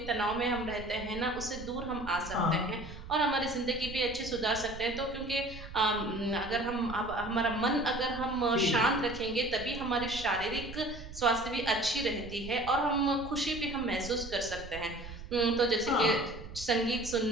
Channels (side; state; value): right; noise; rumble, 13 dB below the sound